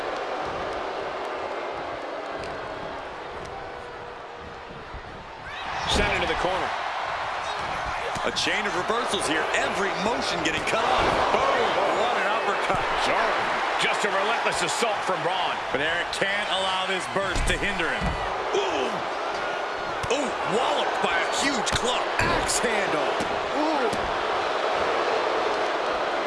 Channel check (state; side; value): identical; both; correlation 1.00